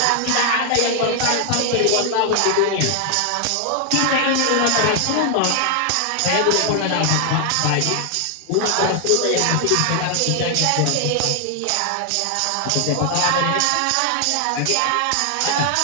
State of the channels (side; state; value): both; different; correlation 0.00